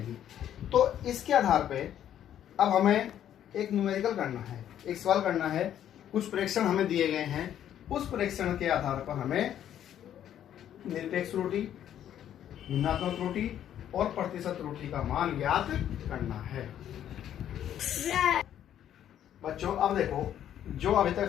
तो इसके आधार पे अब हमें एक न्यूमेरिकल करना है, एक सवाल करना है। कुछ प्रेक्षण हमें दिए गए हैं, उस प्रेक्षण के आधार पर हमें निरपेक्ष त्रुटि, भिन्नात्मक त्रुटि और प्रतिशत त्रुटि का मान ज्ञात करना है। बच्चों अब देखो, जो अभी तक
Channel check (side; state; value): right; quieter; 10.6 dB